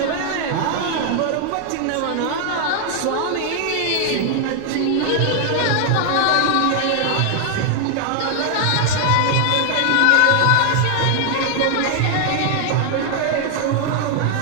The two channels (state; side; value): different; both; correlation 0.00